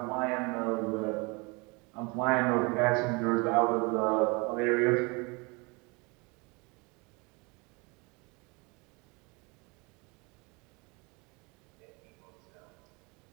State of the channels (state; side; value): quieter; left; 28.7 dB